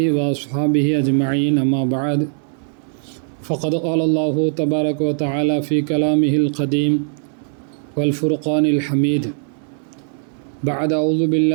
வ அஸ்ஹாபிஹி அஜ்மஈன். அம்மா பஅத். فقد قال الله تبارك وتعالى في كلامه القديم والفرقان الحميد بعد أعوذ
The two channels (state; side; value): silent; left; 61 dB below the other